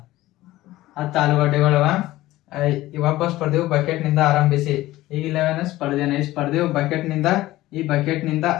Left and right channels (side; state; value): right; quieter; 16.7 dB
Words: 10 ಆಲೂಗಡ್ಡೆಗಳವ. ಒಬ್ಬ ಸ್ಪರ್ಧೆಯು ಬಕೆಟ್ ನಿಂದ ಆರಂಭಿಸಿ ಈಗಿಲ್ಲವೇನ ಸ್ಪರ್ಧೆಯು ಬಕೆಟ್ ನಿಂದ